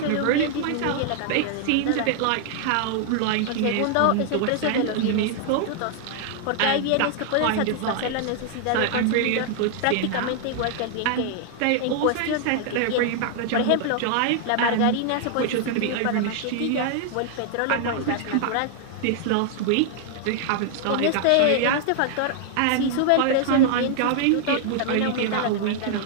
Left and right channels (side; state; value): both; different; correlation 0.00